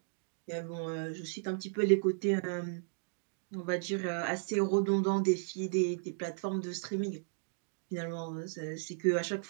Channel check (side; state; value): left; silent; digital silence